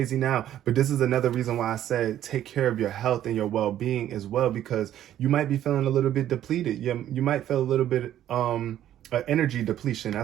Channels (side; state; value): left; quieter; 11.8 dB